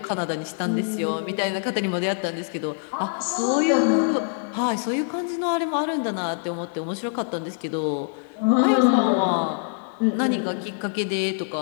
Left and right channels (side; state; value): right; silent; 62 dB below the other